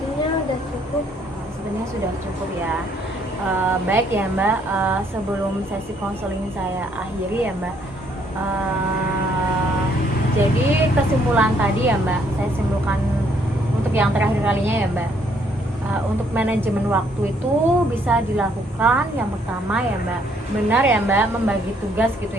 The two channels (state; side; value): normal; both; correlation 0.67